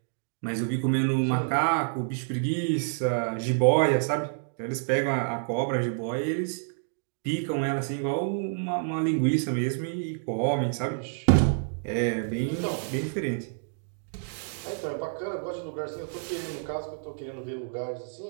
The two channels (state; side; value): silent; left; digital silence